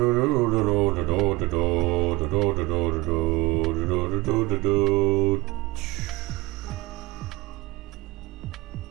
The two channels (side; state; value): left; quieter; 22.3 dB